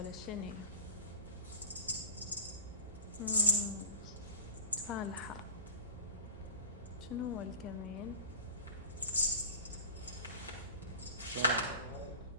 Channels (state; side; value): inverted; both; correlation -0.35